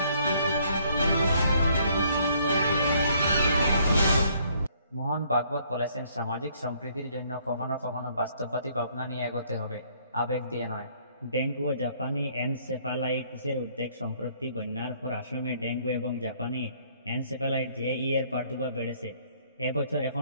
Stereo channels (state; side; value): inverted; both; correlation -0.64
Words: মোহন ভাগবত বলেছেন, সামাজিক সম্প্রীতির জন্য কখনো কখনো বাস্তববাদী ভাবনা নিয়ে এগোতে হবে, আবেগ দিয়ে নয়। ডেঙ্গু ও জাপানি এনসেফালাইটিসের উদ্বেগ। সম্প্রতি বন্যার পর আসামে ডেঙ্গু এবং জাপানি এনসেফালাইট জেই এর প্রাদুর্ভাব বেড়েছে। এবছর